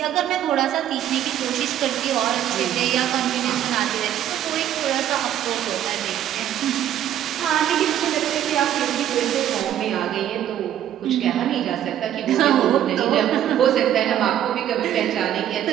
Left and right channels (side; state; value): left; quieter; 11.1 dB